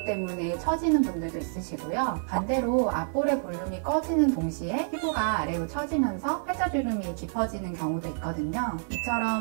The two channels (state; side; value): silent; left; 59 dB below the other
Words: 때문에 처지는 분들도 있으시고요. 반대로 앞볼의 볼륨이 꺼지는 동시에 피부가 아래로 처지면서 팔자주름이 깊어지는 경우도 있거든요.